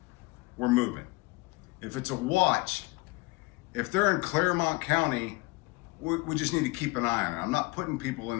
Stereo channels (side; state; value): right; quieter; 23.6 dB